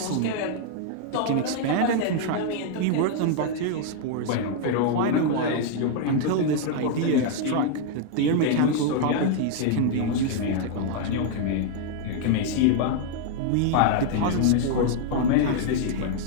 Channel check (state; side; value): different; both; correlation -0.01